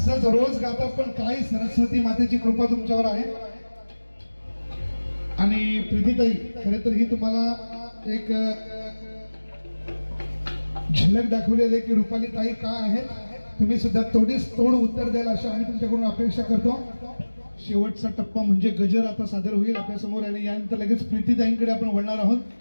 रोज गाता. पण काय सरस्वती मातेची कृपा तुमच्यावर आहे. आणि प्रीतीताई खरं तर ही तुम्हाला एक झलक दाखवलेली आहे की रुपाली ताई काय आहेत. तुम्ही सुद्धा तोड उत्तर द्याल अशी आम्ही तुमच्याकडून अपेक्षा करतो. शेवटचा टप्पा म्हणजे गजर आता सादर होईल आपल्या समोर आणि यानंतर लगेच प्रीतीताईंकडे आपण वळणार आहोत.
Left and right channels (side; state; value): both; inverted; correlation -1.00